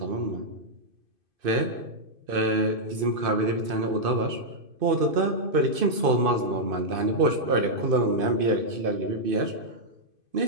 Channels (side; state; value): left; late; 2.5 ms